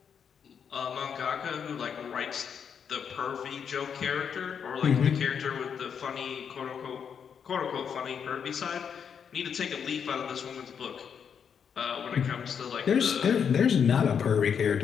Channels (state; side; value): quieter; right; 7.3 dB